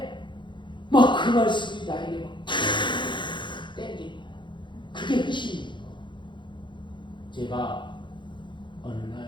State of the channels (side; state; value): right; late; 0.23 ms